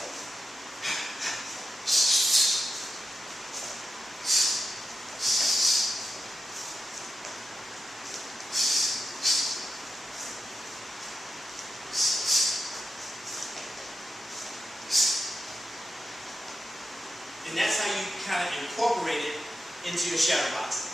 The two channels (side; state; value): both; normal; correlation 0.89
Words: And that's how you kind of incorporate it into your shadow boxing.